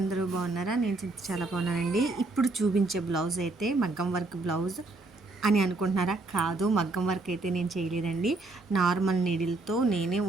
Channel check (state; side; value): quieter; left; 3.3 dB